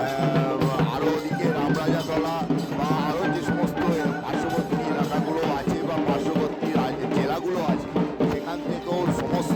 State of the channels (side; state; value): both; identical; correlation 1.00